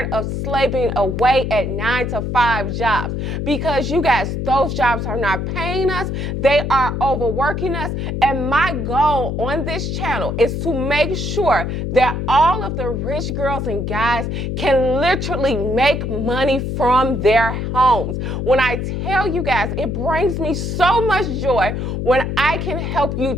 of slaving away at 9-to-5 jobs, because you guys, those jobs are not paying us, they are overworking us, and my goal on this channel is to make sure that all of the rich girls and guys can literally make money from their homes. When I tell you guys, it brings me so much joy when I can help you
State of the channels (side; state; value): left; noise; hum, 2 dB below the sound